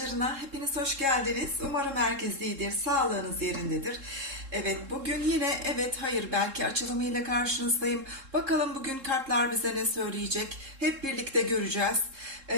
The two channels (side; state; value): left; late; 3.7 ms